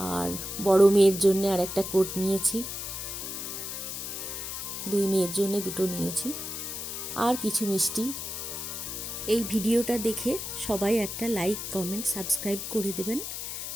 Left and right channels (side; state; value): left; noise; hiss, 6 dB below the sound